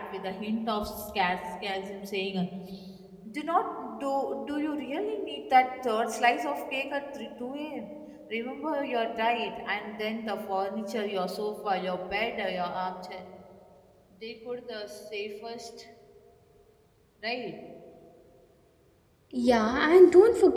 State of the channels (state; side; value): identical; both; correlation 1.00